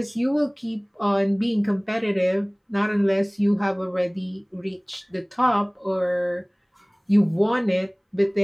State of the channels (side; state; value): both; identical; correlation 1.00